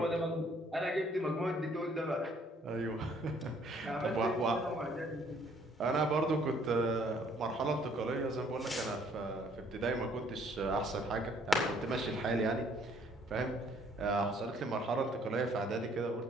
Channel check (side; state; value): both; normal; correlation 0.62